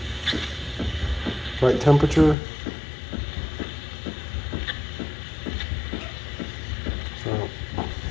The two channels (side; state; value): right; drops out; at 2.4 s